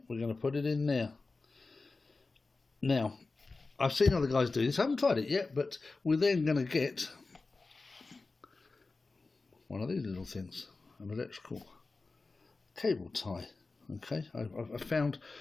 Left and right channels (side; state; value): right; quieter; 3.7 dB